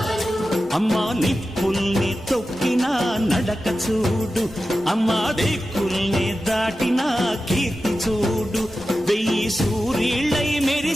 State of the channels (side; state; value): both; normal; correlation 0.93